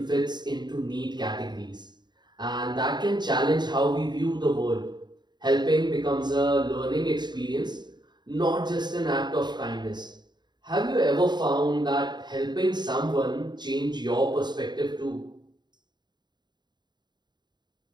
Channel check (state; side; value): late; left; 0.21 ms